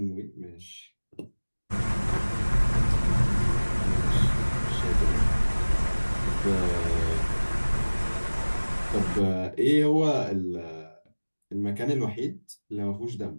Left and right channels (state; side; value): inverted; both; correlation -1.00